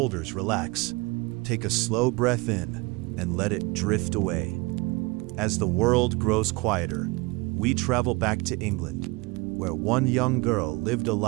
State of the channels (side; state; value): left; quieter; 24.8 dB